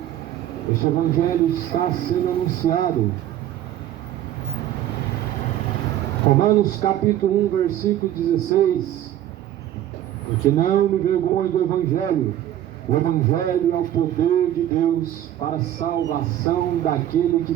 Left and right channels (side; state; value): left; quieter; 12.2 dB